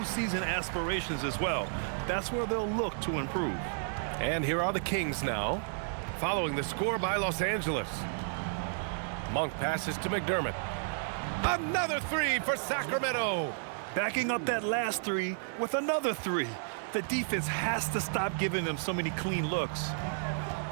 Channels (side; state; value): left; silent; digital silence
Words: aspirations as well. That's where they'll look to improve. And here are the Kings now, following the score by Los Angeles. Monk passes to McDermott. Another 3 for Sacramento. Backing up that last 3 with another 3. The defense has to stop giving them so many clean looks.